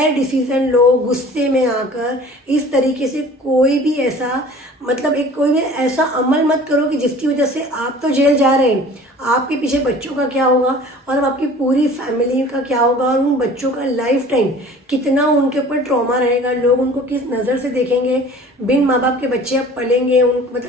डिसीजन लो, गुस्से में आकर इस तरीके से कोई भी ऐसा मतलब एक कोई भी ऐसा अमल मत करो कि जिसकी वजह से आप तो जेल जा रहे हैं, आपके पीछे बच्चों का क्या होगा और अब आपकी पूरी फैमिली का क्या होगा, और उन बच्चों का लाइफ टाइम कितना उनके ऊपर ट्रॉमा रहेगा, लोग उनको किस नज़र से देखेंगे। बिन माँ बाप के बच्चे अब पलेंगे, उन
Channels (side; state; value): both; normal; correlation 0.46